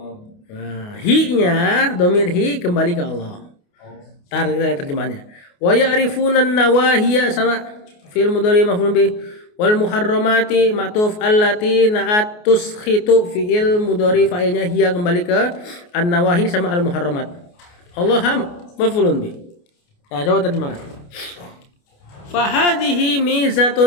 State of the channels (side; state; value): right; late; 28 ms